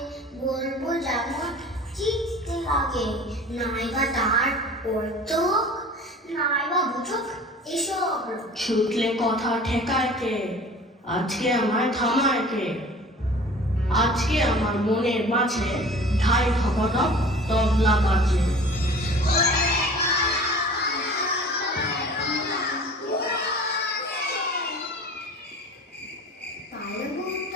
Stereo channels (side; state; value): both; normal; correlation 0.43